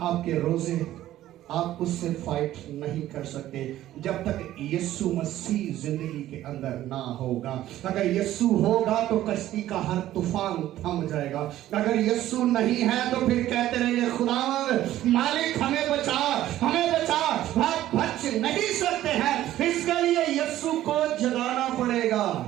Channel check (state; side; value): quieter; left; 13.7 dB